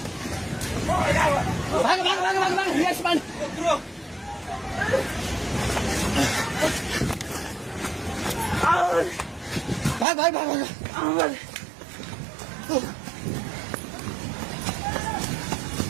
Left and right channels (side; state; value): left; drops out; at 10.1 s